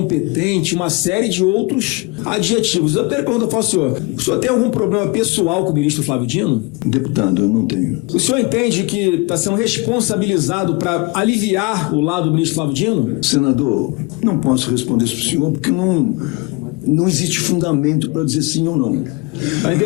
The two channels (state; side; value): quieter; right; 26.6 dB